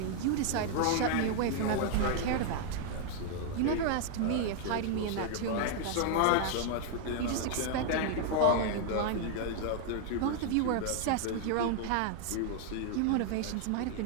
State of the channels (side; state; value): both; different; correlation 0.00